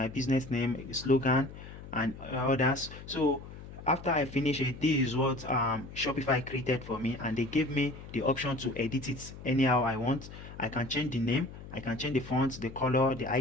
business name, slogan, and others. So after I finish it, this is what Shopify created for me, and they gave me the option to edit it anyhow I want. I can change the name, I can change the font, the color, the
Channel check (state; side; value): noise; left; hum, 14 dB below the sound